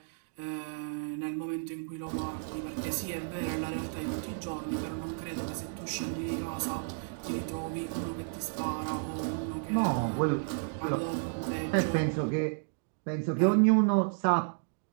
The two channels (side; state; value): left; silent; digital silence